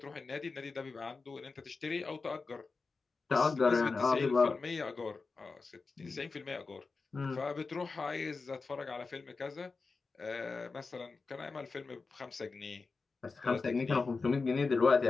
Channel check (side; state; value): right; quieter; 4.3 dB